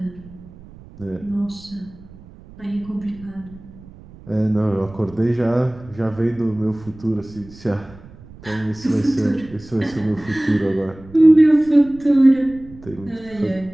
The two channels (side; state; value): right; noise; rumble, 20 dB below the sound